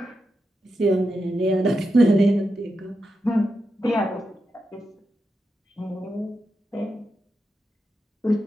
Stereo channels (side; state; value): both; normal; correlation 0.88